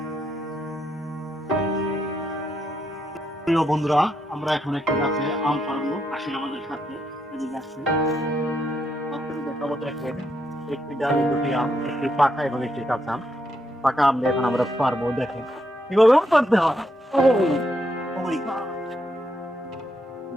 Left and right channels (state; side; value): normal; both; correlation 0.79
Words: বন্ধুরা, আমরা এখন একটি গাছে আম পাড়বো। আসেন আমাদের সাথে। এদিকে আসেন। আপনাদের দেখাবো দেখেন, একটি ডালে দুটি আম, একটি পাকা এবং একটি কাঁচা আম। পাকা আম দিয়ে এখন আমরা পারবো। দেখেন কিভাবে আম পারতে হয়। Oh my God!